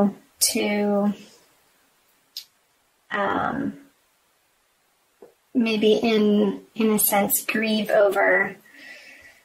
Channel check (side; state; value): both; identical; correlation 1.00